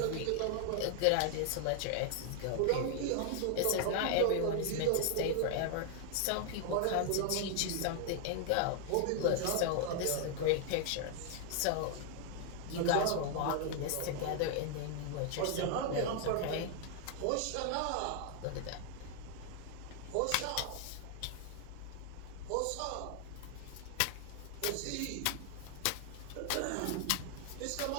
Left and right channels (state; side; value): different; both; correlation 0.00